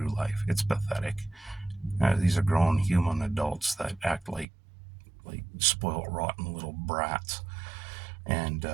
life. It's pathetic. These are grown human adults that act like spoiled, rotten little brats. And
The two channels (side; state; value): left; drops out; at 4.5 s